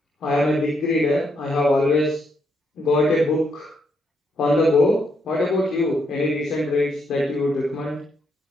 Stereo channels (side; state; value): both; normal; correlation 0.76